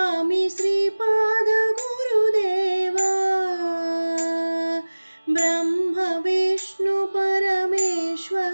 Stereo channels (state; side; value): inverted; both; correlation -1.00